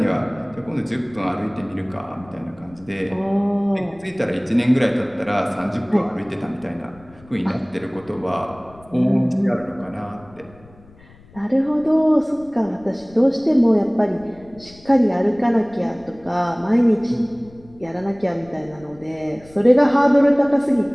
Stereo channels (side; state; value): left; noise; rumble, 25 dB below the sound